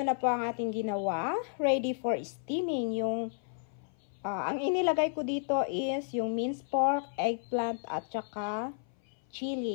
po ang ating ginawa. Ready for steaming. Ang inilagay ko dito is yung minced pork, eggplant, at saka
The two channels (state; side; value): silent; right; 56 dB below the other